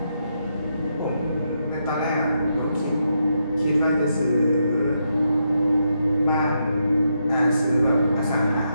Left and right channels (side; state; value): both; inverted; correlation -0.81